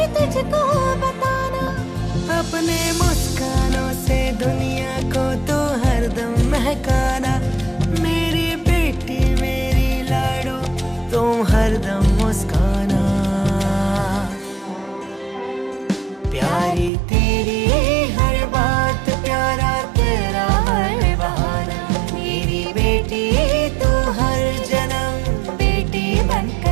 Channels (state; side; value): drops out; left; at 16.9 s